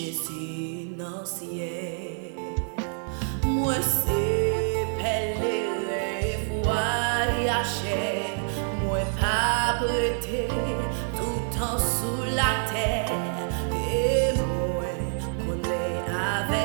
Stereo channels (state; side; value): silent; left; 58 dB below the other